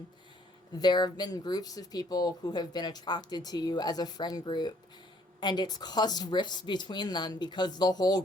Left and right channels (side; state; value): both; normal; correlation 0.63